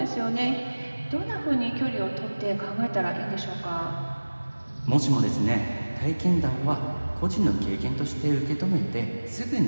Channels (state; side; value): inverted; both; correlation -1.00